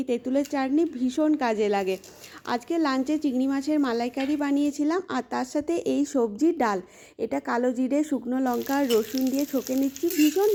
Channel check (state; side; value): identical; both; correlation 1.00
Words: তেঁতুলের চাটনি ভীষণ কাজে লাগে। আজকে লাঞ্চে চিংড়ি মাছের মালাইকারি বানিয়েছিলাম, আর তার সাথে এই সবজির ডাল। এটা কালো জিরে, শুকনো লঙ্কা, রসুন দিয়ে ছকে নিচ্ছি, ভীষণ